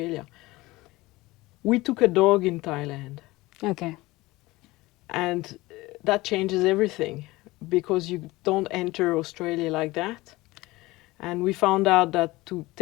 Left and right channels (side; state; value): right; quieter; 20.2 dB